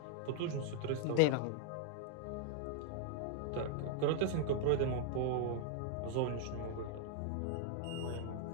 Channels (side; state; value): both; different; correlation 0.00